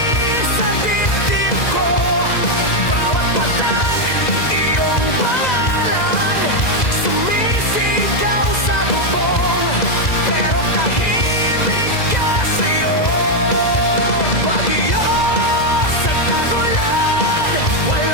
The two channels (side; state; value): right; late; 2.0 ms